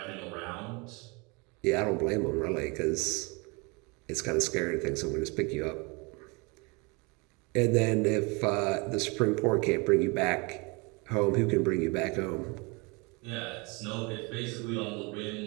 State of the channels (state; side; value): quieter; left; 28.9 dB